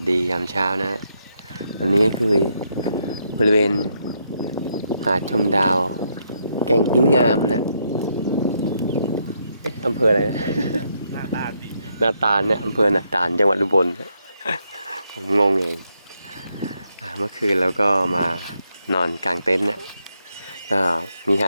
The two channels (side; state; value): both; inverted; correlation -0.78